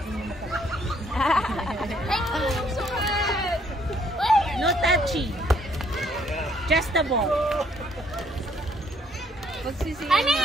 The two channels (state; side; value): normal; both; correlation 0.66